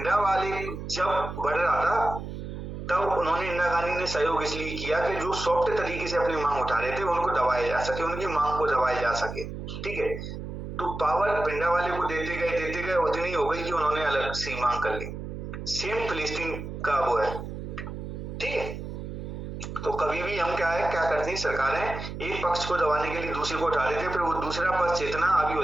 वाले जब बढ़ रहा था तब उन्होंने इंदिरा गांधी ने सहयोग इसलिए किया कि जो सॉफ्ट तरीके से अपनी मांग उठा रहे थे उनको दबाया जा सके, उनकी मांग को दबाया जा सके। ठीक है, तो पावर भिंडरा वाले को देते गए उतनी हो गई कि उन्होंने अलग सी मांग कर ली। सेम फिलिस्तीन का वो है। ठीक है, तो कभी भी हम क्या करती हैं सरकारें, एक पक्ष को दबाने के लिए दूसरे को उठा देते हैं, फिर वो दूसरा पक्ष इतना हावी हो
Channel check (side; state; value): right; noise; hum, 8 dB below the sound